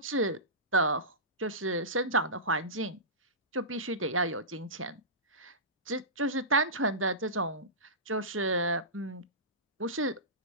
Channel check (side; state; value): both; normal; correlation -0.20